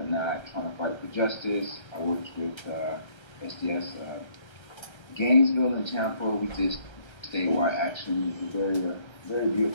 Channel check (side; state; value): right; late; 1.3 ms